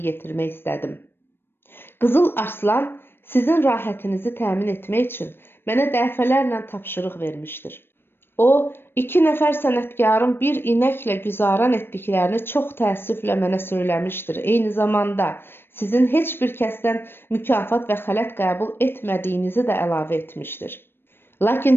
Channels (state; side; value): late; right; 0.10 ms